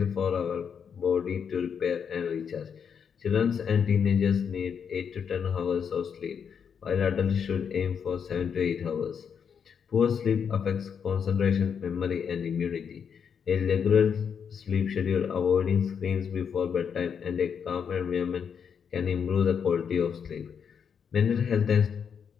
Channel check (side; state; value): right; quieter; 7.1 dB